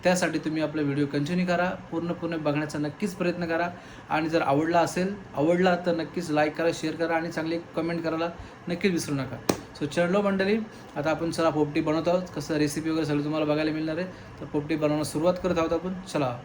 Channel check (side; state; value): both; identical; correlation 1.00